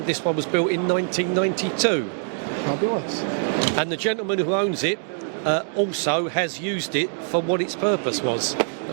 this one was built in 1992. Fabulous. And the gentleman who owns it also has used it for what its purpose was,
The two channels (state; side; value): silent; left; 57 dB below the other